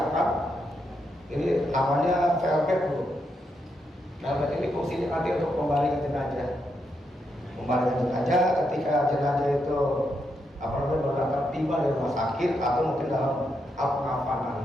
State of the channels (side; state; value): both; normal; correlation 0.81